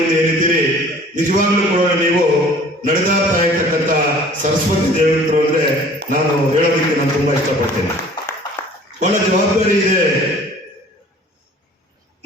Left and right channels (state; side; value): normal; both; correlation 0.50